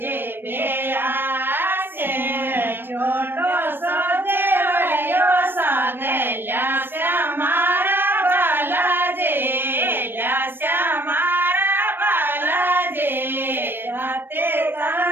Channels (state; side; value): late; left; 0.098 ms